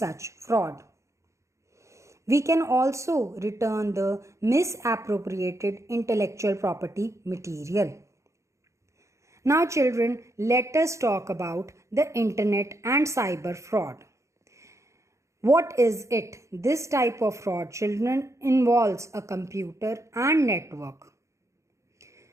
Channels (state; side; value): late; left; 0.14 ms